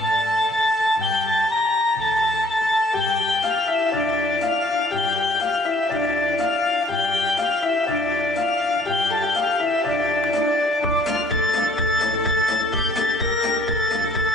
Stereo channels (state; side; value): normal; both; correlation 0.58